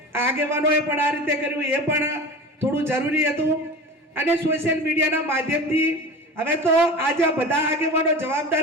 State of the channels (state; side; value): normal; both; correlation 0.33